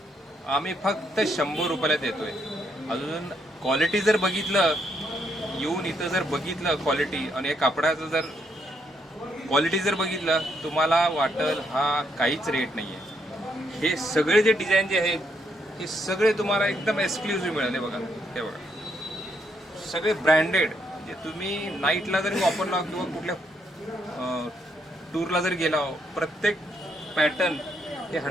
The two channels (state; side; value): normal; both; correlation 0.75